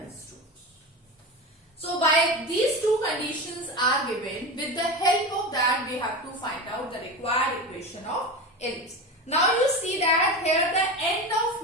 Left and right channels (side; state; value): both; normal; correlation 0.25